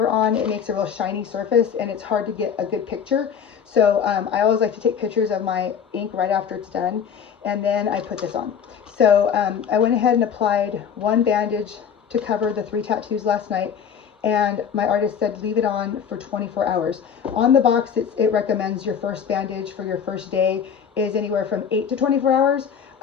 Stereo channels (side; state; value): right; quieter; 7.5 dB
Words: on, it makes a real shiny surface and it's hard to get a good picture. So I always like to take pictures of my ink right after it's done, and then I put this on. So I went ahead and applied one bandage to cover the 3 tattoos last night, and my artist said leave it on for 24 hours. On the box, it recommends your first bandage for your first day is anywhere from 8 to 24 hours.